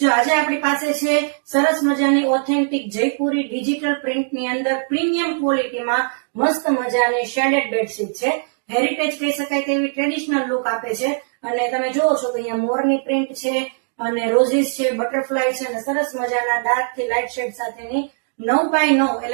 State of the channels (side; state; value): left; silent; digital silence